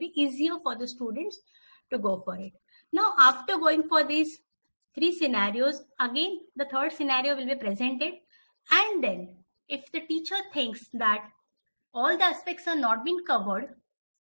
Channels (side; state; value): both; inverted; correlation -1.00